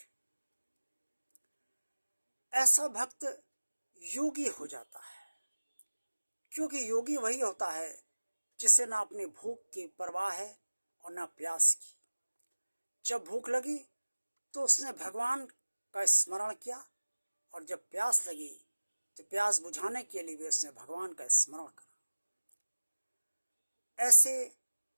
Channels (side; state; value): both; inverted; correlation -1.00